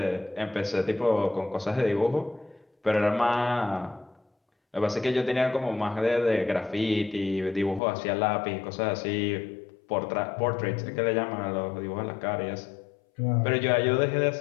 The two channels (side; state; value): right; drops out; at 7.8 s